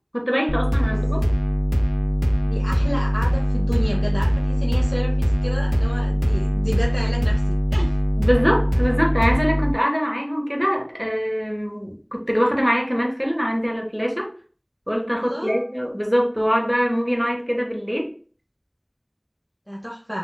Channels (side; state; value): both; identical; correlation 1.00